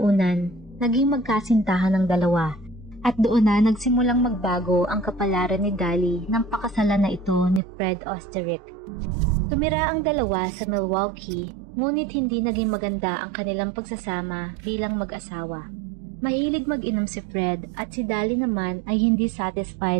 naging magkasintahan ng dalawa. At doon na nagsimulang magbago ang kapalaran ni Dali nang pakasalan na ito ni Fred Osterich. Tumira ang dalawa sa Milwaukee, ngunit hindi naging maganda ang kanilang pagsasama bilang mag-asawa. Mahilig mag-inom si Fred at si Dali naman ay hindi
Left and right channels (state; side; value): drops out; left; at 7.6 s